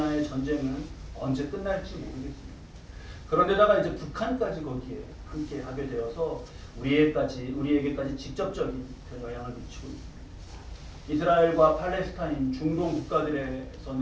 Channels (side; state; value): both; identical; correlation 1.00